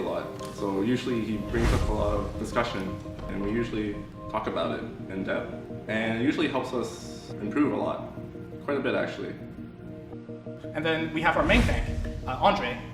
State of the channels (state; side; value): identical; both; correlation 1.00